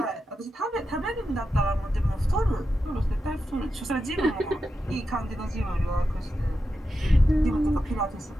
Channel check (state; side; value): normal; both; correlation 0.88